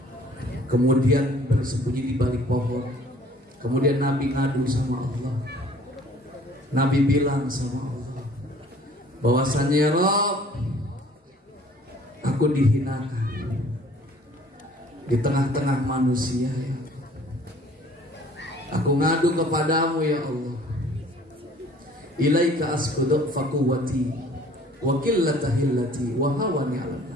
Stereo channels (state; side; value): normal; both; correlation 0.53